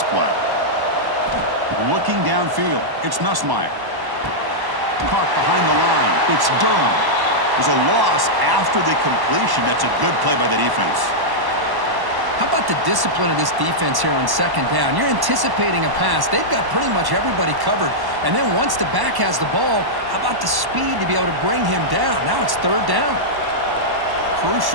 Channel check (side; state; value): left; late; 1.1 ms